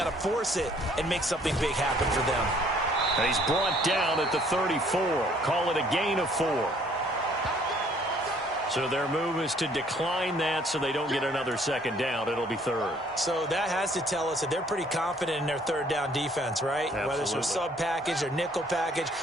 to force it and make something big happen for them. And he's brought down at the 34. Call it a gain of 4. So their move is to decline that so they don't get another 2nd down. It'll be 3rd. So that has to tell us that they're pretty confident in their 3rd down defense, right? Absolutely. Whether it's a sub package or nickel package,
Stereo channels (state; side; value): normal; both; correlation 0.60